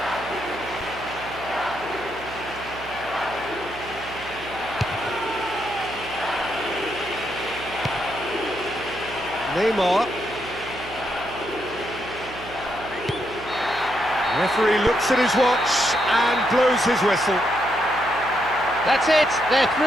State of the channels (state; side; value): noise; right; hum, 16 dB below the sound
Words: Neymar. Referee looks at his watch and blows his whistle. That's it, they're